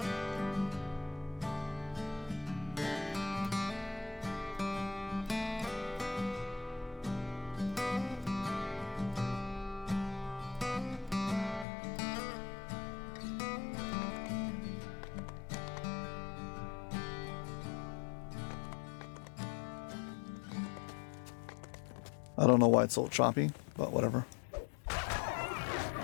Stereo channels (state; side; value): drops out; right; at 11.7 s